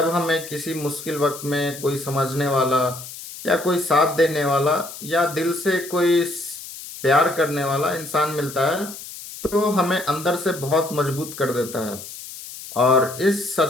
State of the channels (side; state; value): left; noise; hiss, 13 dB below the sound